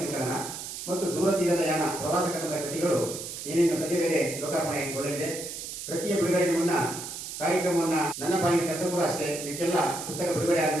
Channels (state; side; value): noise; right; hiss, 8 dB below the sound